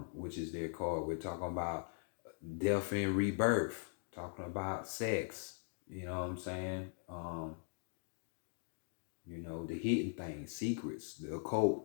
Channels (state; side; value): silent; right; digital silence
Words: which is their card, we're talking about death and rebirth, talking about sex, you know what I'm saying? The hidden things, secrets, the